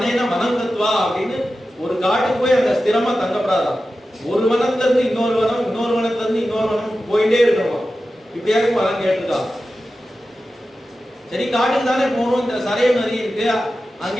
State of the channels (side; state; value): both; normal; correlation 0.93